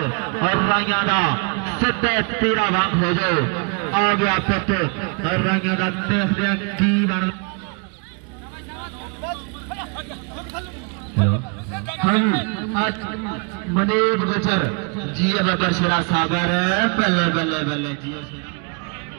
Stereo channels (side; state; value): left; quieter; 35.3 dB